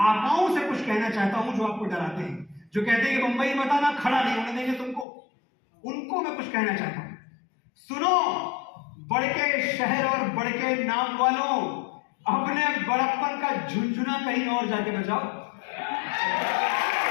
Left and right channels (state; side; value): drops out; right; at 5.1 s